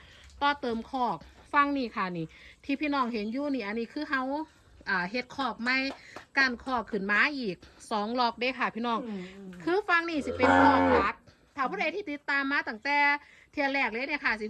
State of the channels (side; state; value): both; identical; correlation 1.00